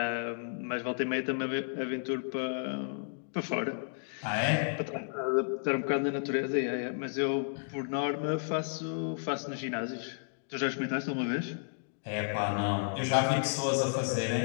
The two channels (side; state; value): right; silent; digital silence